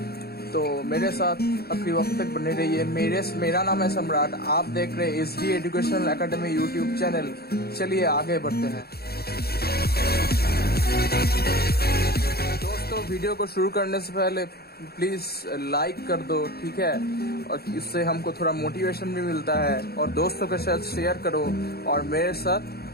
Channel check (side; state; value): right; late; 0.46 ms